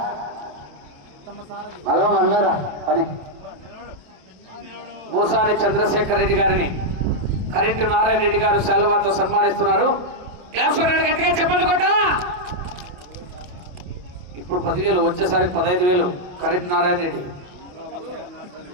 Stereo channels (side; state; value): left; late; 28 ms